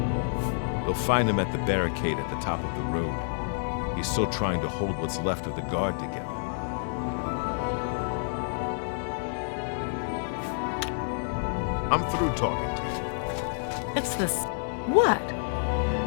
They'll find him at the barricade at the top of the road. He's still trying to hold what's left of the guard together. I'm through talking to you. It's this. What?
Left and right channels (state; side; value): silent; right; digital silence